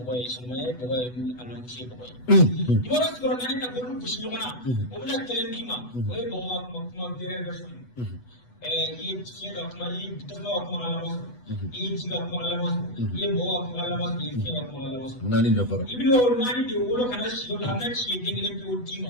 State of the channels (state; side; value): late; right; 8.1 ms